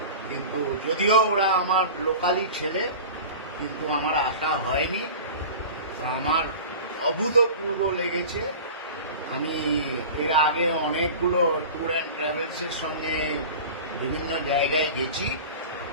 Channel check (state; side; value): inverted; both; correlation -0.35